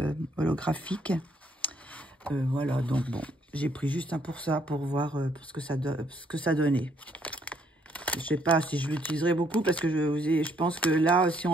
holographiques. Voilà, donc bon, j'ai pris juste un pour ça, pour voir ce que ça donnait. Je sais pas si je l'utiliserai beaucoup, parce que je pense que là, si on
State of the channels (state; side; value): normal; both; correlation 0.68